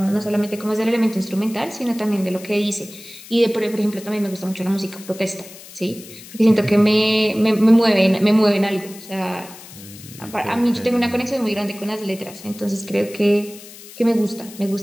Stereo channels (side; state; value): left; noise; hiss, 17 dB below the sound